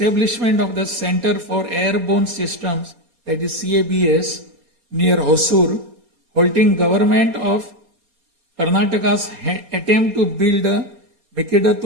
of the Center for Airborne Systems, that is CABS, near Hosur, halting government of Karnataka's attempt to build a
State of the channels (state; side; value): late; left; 4.2 ms